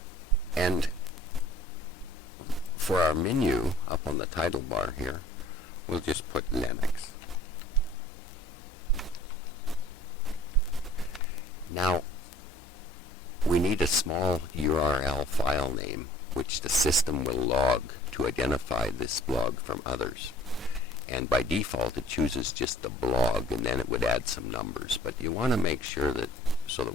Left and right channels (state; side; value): normal; both; correlation 0.52